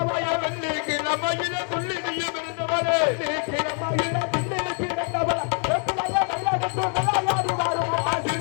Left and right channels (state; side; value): quieter; right; 39.8 dB